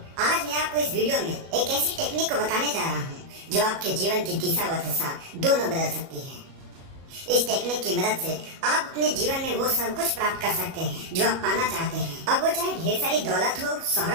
आज मैं आपको इस वीडियो में एक ऐसी टेक्निक को बताने जा रहा हूँ जो आपके जीवन की दिशा व दशा दोनों बदल सकती है। इस टेक्निक की मदद से आप अपने जीवन में वो सब कुछ प्राप्त कर सकते हैं जो आप पाना चाहते हैं। अब वो चाहे ढेर सारी दौलत हो,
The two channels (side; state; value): left; late; 37 ms